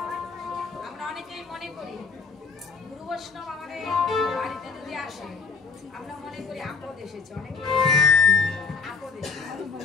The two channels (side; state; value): right; quieter; 4.8 dB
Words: আমরা অনেকেই মনে করি গুরু বৈষ্ণব আমাদের বাড়িতে যদি আসে আমরা মনে করি আপদ এসেছে অনেক আপদ এসেছে